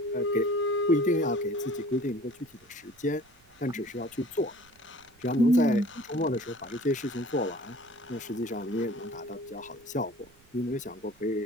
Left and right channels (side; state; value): right; noise; rumble, 30 dB below the sound